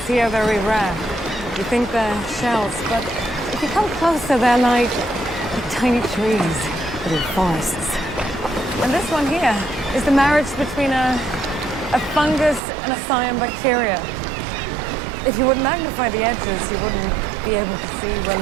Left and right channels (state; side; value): drops out; left; at 12.6 s